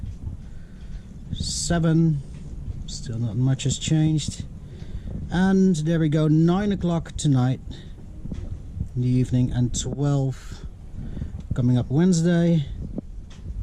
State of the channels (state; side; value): identical; both; correlation 1.00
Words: 7, still not much has changed. And there we go, 9 o'clock tonight in the evening, and 12 coming up Wednesday.